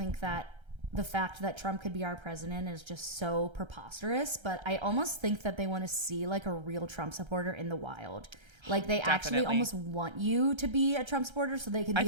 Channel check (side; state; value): left; late; 1.3 ms